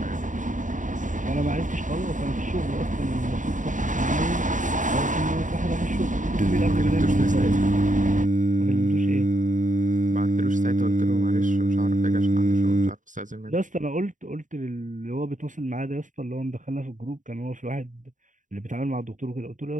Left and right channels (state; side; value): late; left; 0.37 ms